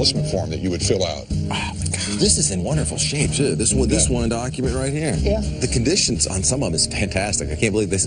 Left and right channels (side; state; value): both; identical; correlation 1.00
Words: form that you would fill out. Oh, my God. This is in wonderful shape, too. This one document right here. Yeah. The conditions on some of them is fantastic. I can't believe this